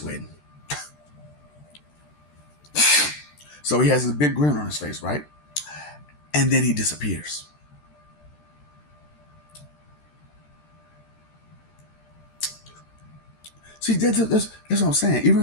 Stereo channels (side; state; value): right; late; 13 ms